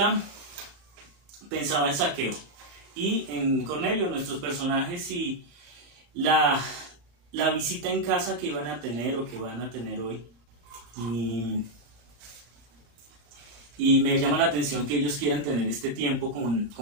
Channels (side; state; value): left; late; 35 ms